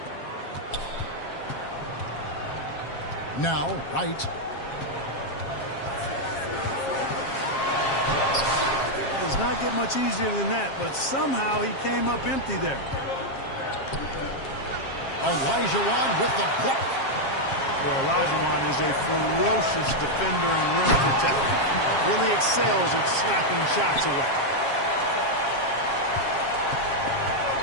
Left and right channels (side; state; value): right; late; 7.4 ms